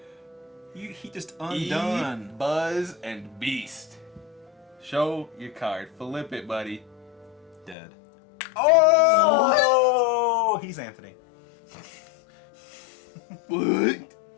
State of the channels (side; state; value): right; drops out; at 7.8 s